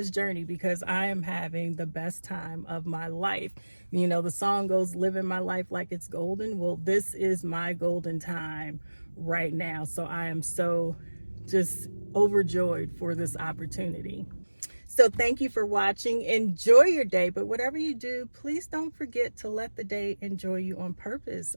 journey, because I am having the best time of my life. The song goes, living my life like it's golden. Well, this is my golden time right now. So I am so just overjoyed for this opportunity. So thank you for watching. Enjoy your day, but whatever you do, please don't forget to let the day enjoy you on purpose.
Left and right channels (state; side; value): inverted; both; correlation -1.00